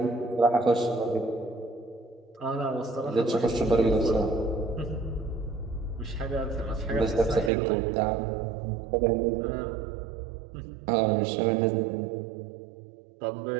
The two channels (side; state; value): left; drops out; at 7.5 s